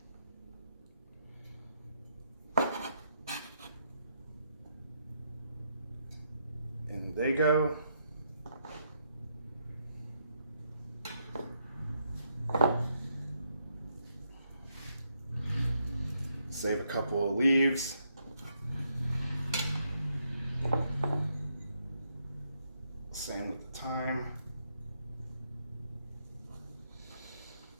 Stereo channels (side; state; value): both; inverted; correlation -0.77